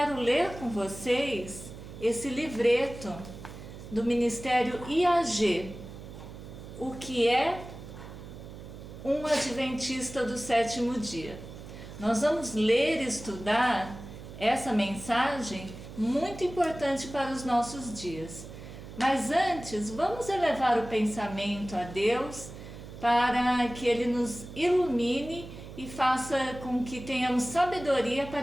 ler com vocês esse livreto do Ministério IAG, o que é um Adventista do Sétimo Dia. Nós vamos ler e estudar essa mensagem muito importante para os nossos dias. Mas antes, vamos elevar o pensamento a Deus para que Ele nos ilumine e faça com que tenhamos sabedoria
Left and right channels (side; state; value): right; noise; hum, 13 dB below the sound